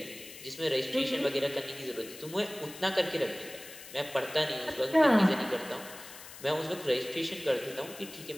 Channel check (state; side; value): noise; left; hiss, 15 dB below the sound